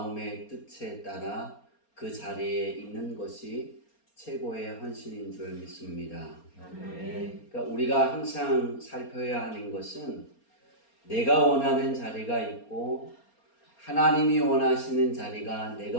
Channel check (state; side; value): late; right; 4.3 ms